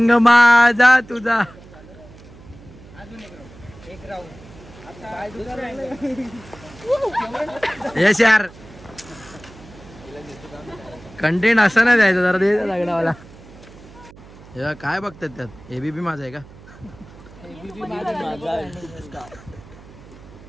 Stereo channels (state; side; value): noise; right; hum, 20 dB below the sound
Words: माझा तुझा. यस यार कंटेंट असं नाही द्यायचं जरा. दे लागणावाला. काय बघतात त्यात. एबीपी माझा आहे का.